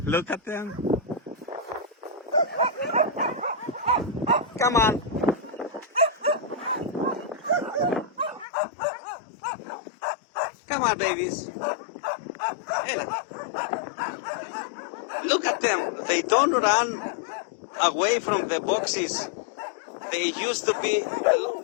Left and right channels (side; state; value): right; drops out; at 8.5 s